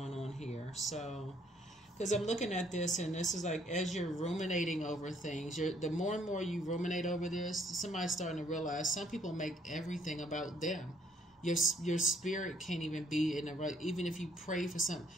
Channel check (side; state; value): both; normal; correlation 0.65